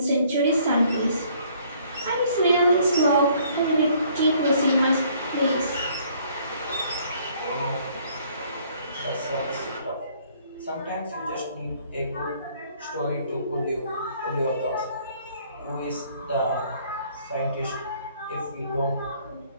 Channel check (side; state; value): both; inverted; correlation -0.61